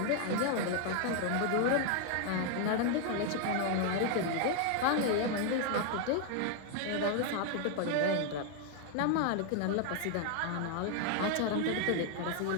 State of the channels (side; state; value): both; different; correlation 0.00